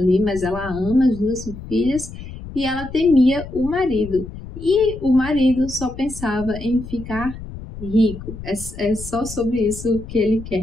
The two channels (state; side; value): noise; left; rumble, 12 dB below the sound